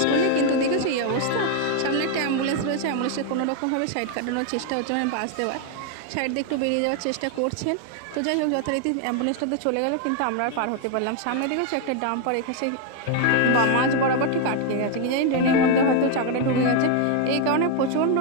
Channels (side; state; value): both; different; correlation 0.01